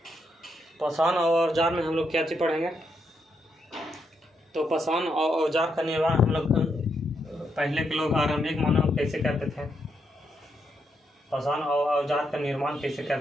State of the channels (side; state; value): both; normal; correlation 0.80